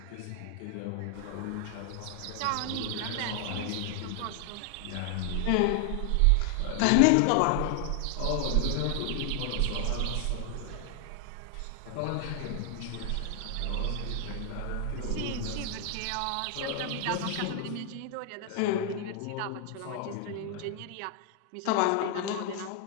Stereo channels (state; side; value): different; both; correlation 0.00